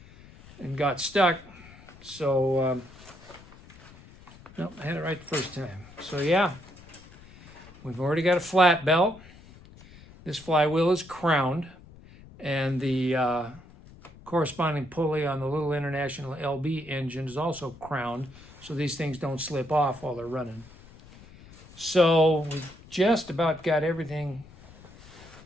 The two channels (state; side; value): noise; left; rumble, 21 dB below the sound